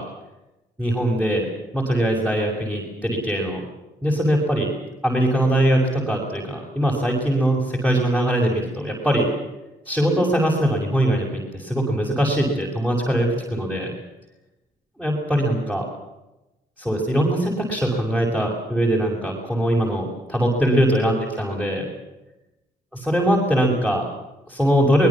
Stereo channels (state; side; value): normal; both; correlation 0.75